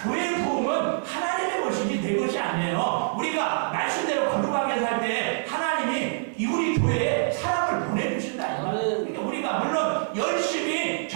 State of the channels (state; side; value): silent; left; digital silence